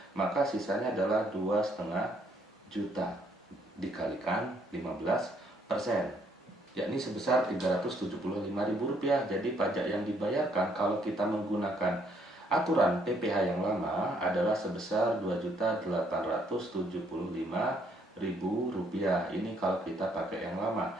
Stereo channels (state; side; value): normal; both; correlation 0.69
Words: maka sisanya adalah 2,5 juta dikalikan 15%, yakni sebesar Rp375.000. Jadi pajak yang dibayarkan kalau kita menggunakan aturan PPh yang lama adalah sebesar Rp2.875.000. Ini kalau kita pakai yang lama.